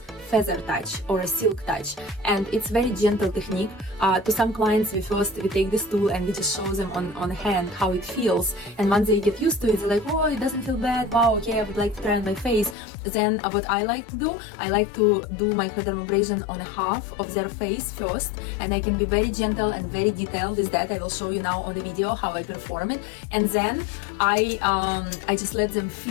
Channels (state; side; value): drops out; right; at 12.8 s